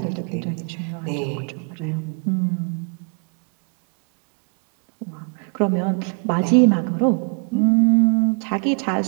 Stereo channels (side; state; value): left; quieter; 39.7 dB